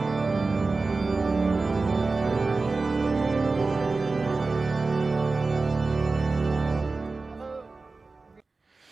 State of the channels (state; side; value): quieter; left; 3.8 dB